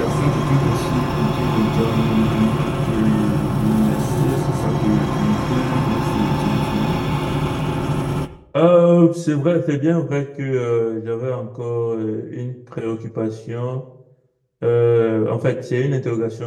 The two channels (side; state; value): both; identical; correlation 1.00